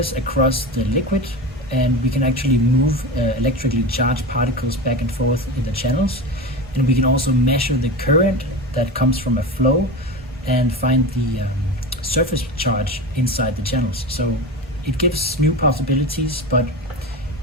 across the liquid, and we can actually move electrically charged particles back and forth in the channels. And we can also measure the current that comes from a flow and find the surface charge inside the channels. So it gives new possibilities, but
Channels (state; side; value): normal; both; correlation 0.25